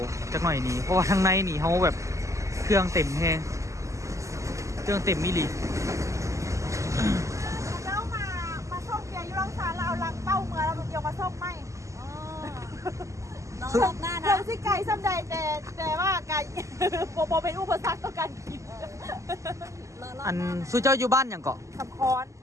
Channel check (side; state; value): left; late; 0.15 ms